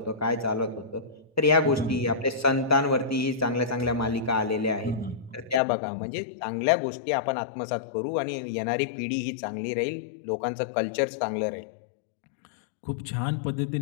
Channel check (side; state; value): right; drops out; at 5.6 s